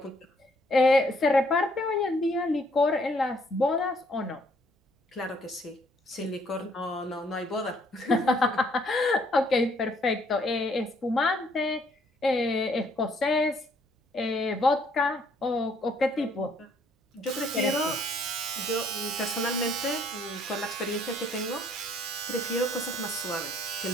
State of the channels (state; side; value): normal; both; correlation 0.65